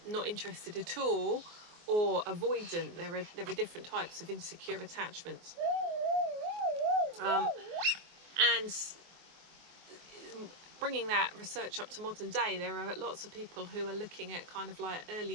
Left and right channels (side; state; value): left; late; 24 ms